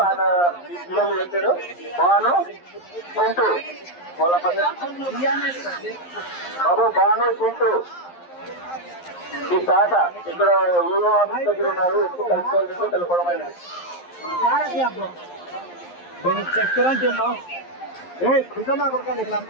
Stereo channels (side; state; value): right; late; 11 ms